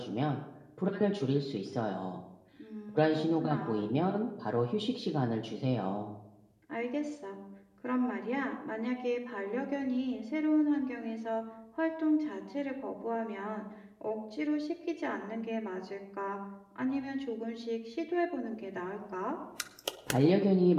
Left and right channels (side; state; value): both; identical; correlation 1.00